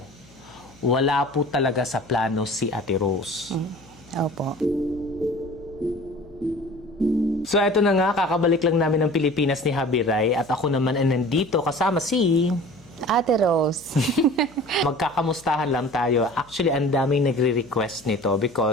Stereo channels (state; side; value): noise; left; hum, 27 dB below the sound